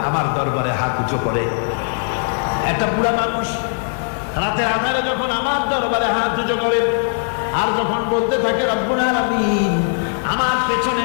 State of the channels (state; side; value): silent; right; 64 dB below the other